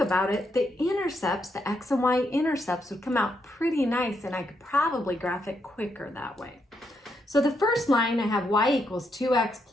about it, the intercepts, the x and y intercepts would come out pretty nice, and I could probably graph it quicker that way. So the first line, I have y equals 2x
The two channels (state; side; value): normal; both; correlation 0.79